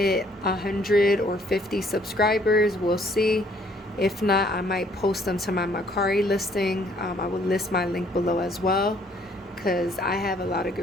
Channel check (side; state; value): both; normal; correlation 0.63